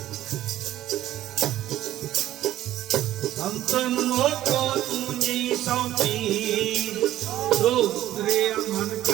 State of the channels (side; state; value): left; quieter; 13.5 dB